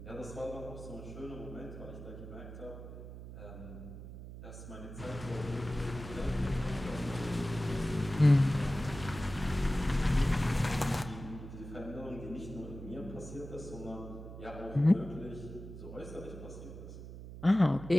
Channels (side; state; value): right; noise; hum, 12 dB below the sound